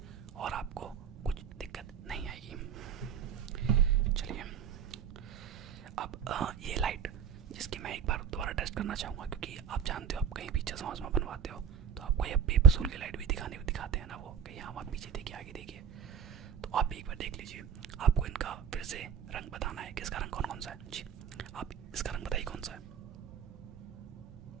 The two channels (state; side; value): quieter; left; 7.8 dB